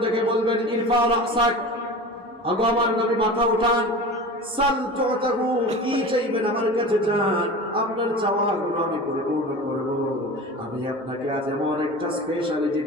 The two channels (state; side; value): normal; both; correlation 0.33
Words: থেকে বলবেন, ইরফা রাসাক, আগো আমার নবী মাথা উঠান, সাল তুতাহু, কি চাইবেন আমার কাছে চান, আপনার চাওয়াগুলো আমি পরিপূর্ণ করব। আমি আপনাকে আজ এমন একটা স্পেশালিটি